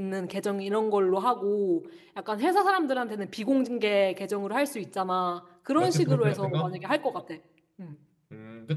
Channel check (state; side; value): identical; both; correlation 1.00